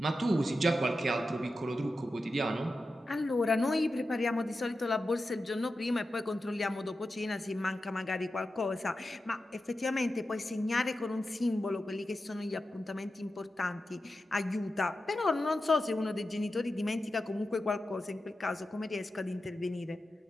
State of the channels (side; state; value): both; normal; correlation 0.91